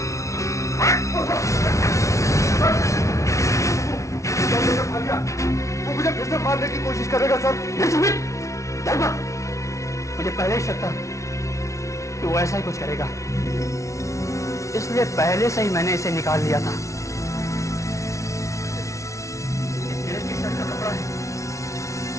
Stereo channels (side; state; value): right; late; 0.14 ms